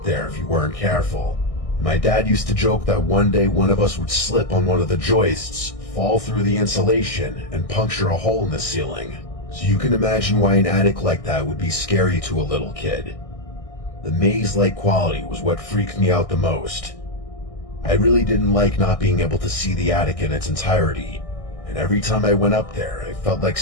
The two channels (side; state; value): right; late; 1.6 ms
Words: there if you weren't careful. My dad used to joke that one day one of us would slip on one of the joists, fall through the insulation, and puncture a hole in the ceiling. So you can imagine why an attic like that would be scary to a little kid. The maze-like quality was what freaked me out the most. I really didn't like not being able to see the attic in its entirety, and every time I went up there, I felt like